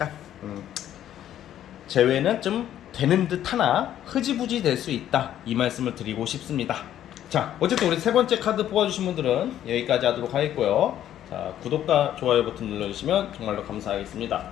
재회는 좀 되는 듯 하나 흐지부지 될 수 있다, 이 말씀을 드리고 싶습니다. 자, 어쨌든 우리 세 번째 카드 뽑아주신 분들은 여기까지 하도록 하겠고요. 자, 구독과 좋아요 버튼 눌러주시면 정말로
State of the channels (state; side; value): quieter; right; 11.4 dB